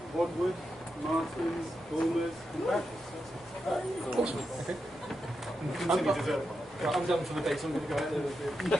Wadwood, Martins, Bulmers, and Badgers. Awesome. Okay. Continue dessert wine. Right, I'm done for the day, so I'm going to go out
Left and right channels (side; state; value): both; normal; correlation 0.87